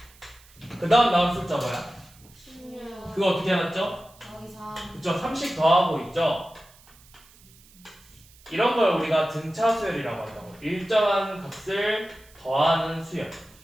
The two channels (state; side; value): noise; right; hiss, 26 dB below the sound